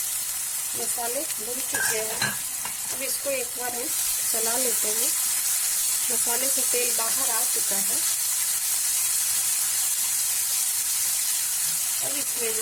मसाले भुन चुके हैं। अब इसको एक बार हम चला लेते हैं। मसाले से तेल बाहर आ चुका है। अब इसमें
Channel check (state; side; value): identical; both; correlation 1.00